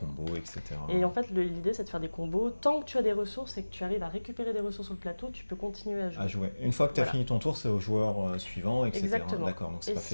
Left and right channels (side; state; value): both; inverted; correlation -1.00